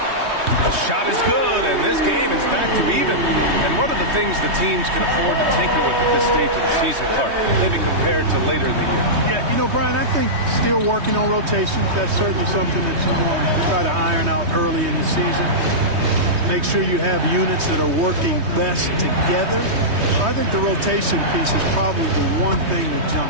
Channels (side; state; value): left; late; 3.2 ms